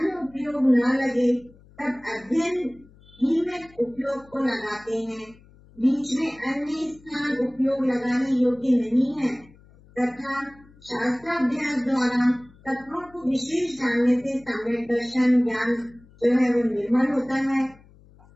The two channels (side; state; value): left; noise; hum, 26 dB below the sound